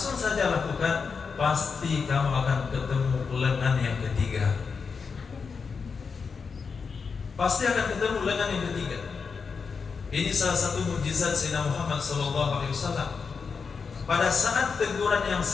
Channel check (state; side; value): quieter; right; 5.4 dB